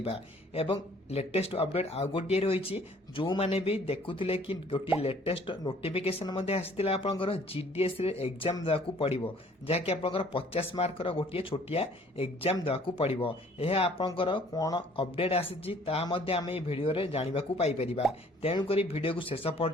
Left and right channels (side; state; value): both; normal; correlation 0.57